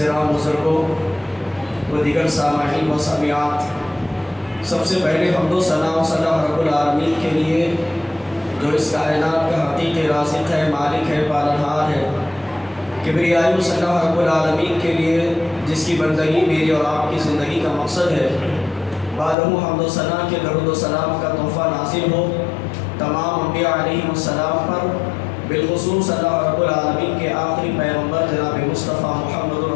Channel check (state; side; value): drops out; right; at 19.4 s